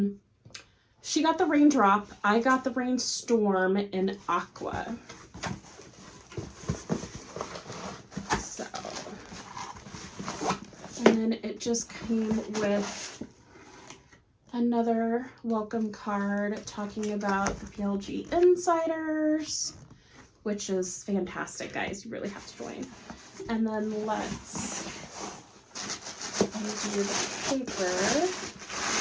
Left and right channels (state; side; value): identical; both; correlation 1.00